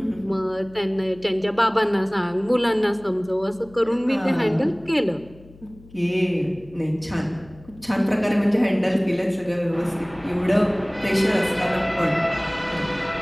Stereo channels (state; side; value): noise; left; hum, 23 dB below the sound